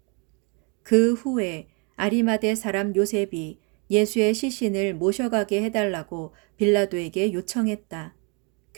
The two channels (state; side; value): quieter; left; 33.7 dB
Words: 그 후에 아리마대 사람 요셉이 예수의 시신을 모셔가게 해달라고 빌라도에게 요청했다.